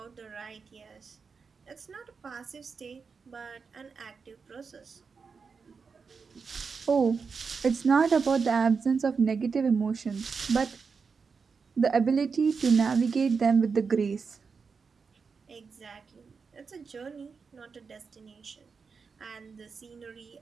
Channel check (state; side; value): quieter; left; 5.3 dB